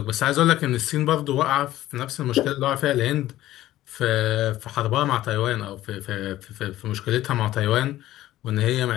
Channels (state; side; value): quieter; right; 14.7 dB